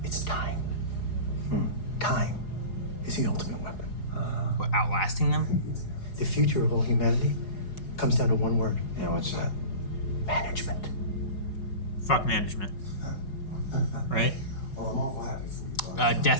It's time. Time is the ultimate weapon. What, outlasting them? The future of all humanity comes down to one word. Yeah, what's that? Management. Fuck management. Right?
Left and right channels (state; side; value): late; right; 4.8 ms